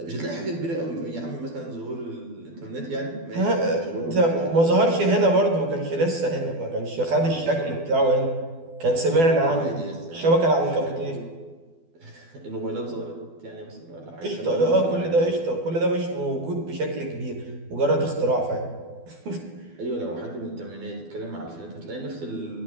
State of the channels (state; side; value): late; left; 12 ms